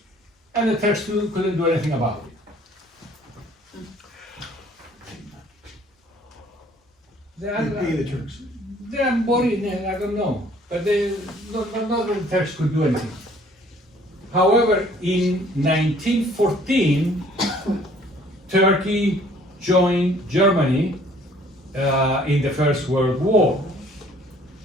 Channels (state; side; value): normal; both; correlation 0.57